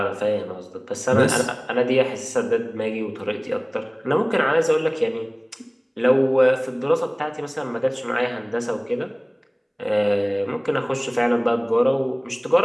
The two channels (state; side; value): identical; both; correlation 1.00